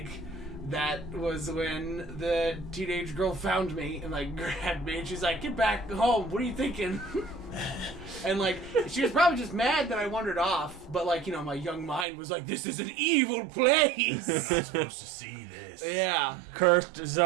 that was when the teenage girl found me and like grabbed me, and she's like, "Get back home, what are you thinking?" And like, she was probably just mad that I wandered off, but like, my young mind was like, this is an evil place. You're not supposed to see this. Yeah. Cursed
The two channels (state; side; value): drops out; left; at 12.1 s